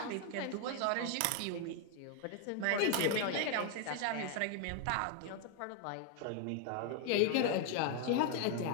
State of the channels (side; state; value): both; different; correlation 0.00